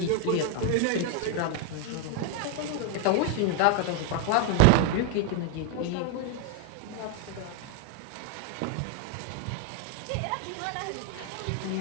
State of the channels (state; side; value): different; both; correlation 0.01